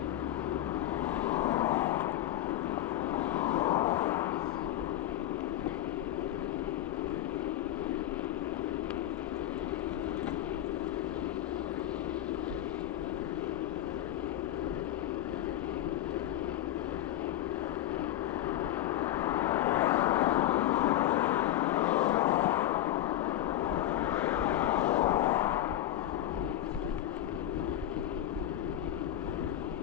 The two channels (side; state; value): right; quieter; 13.0 dB